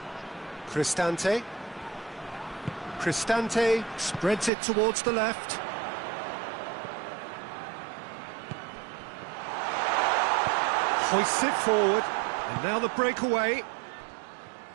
Cristante. Cristante spreads it towards the left. Hoists it forward, and now the breakaway.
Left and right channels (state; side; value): drops out; left; at 4.5 s